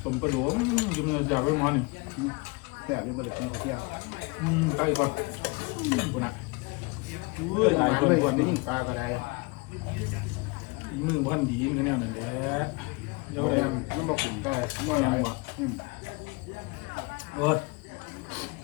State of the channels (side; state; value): right; quieter; 27.7 dB